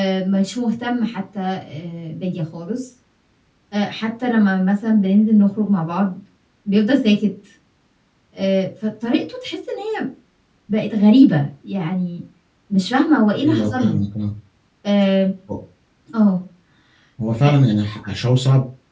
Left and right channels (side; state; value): both; identical; correlation 1.00